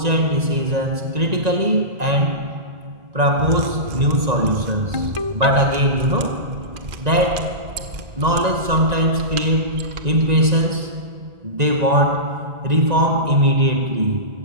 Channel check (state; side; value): late; left; 1.9 ms